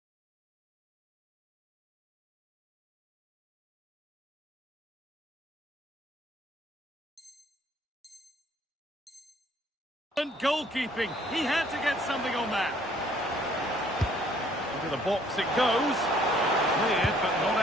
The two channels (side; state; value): both; normal; correlation 0.61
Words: Goalkeeping. He had to get something on that. Into the box it goes. Cleared, but not